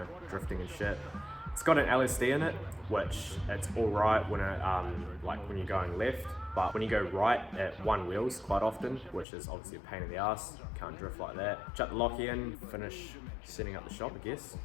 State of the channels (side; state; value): right; drops out; at 9.2 s